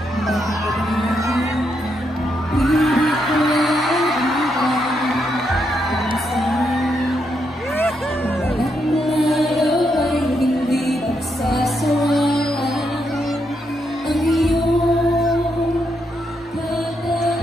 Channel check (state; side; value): normal; both; correlation 0.80